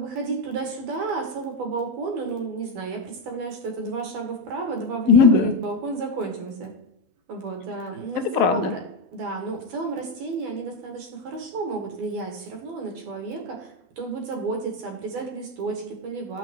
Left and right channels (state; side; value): late; left; 12 ms